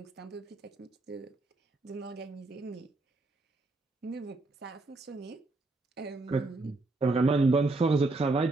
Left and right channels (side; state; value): left; quieter; 3.2 dB